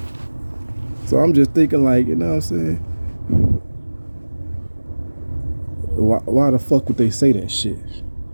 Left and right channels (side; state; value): both; inverted; correlation -1.00